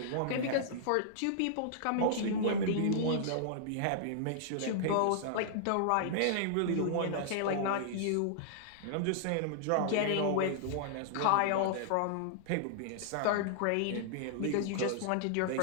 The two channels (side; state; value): both; different; correlation -0.01